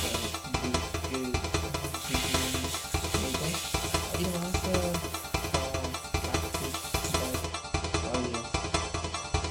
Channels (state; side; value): identical; both; correlation 1.00